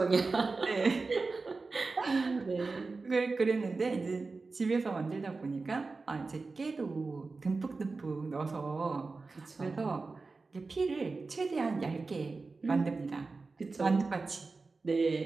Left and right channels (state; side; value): quieter; left; 3.9 dB